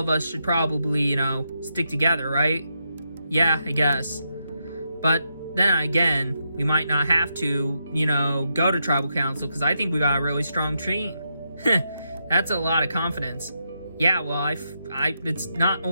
us should probably, stick together, right? Yeah, I guess. But then again, we might not have to, go to tribal council, because I think we got a really strong team. That's a lot of confidence. Yeah, well, it's not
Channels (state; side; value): inverted; both; correlation -0.82